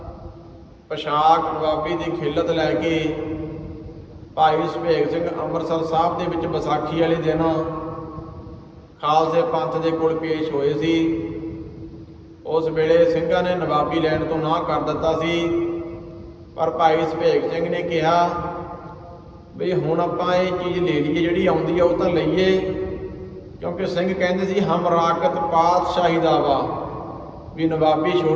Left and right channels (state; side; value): identical; both; correlation 1.00